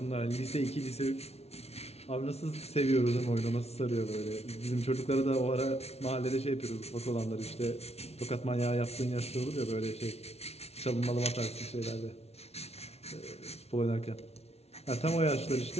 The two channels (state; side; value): late; right; 0.31 ms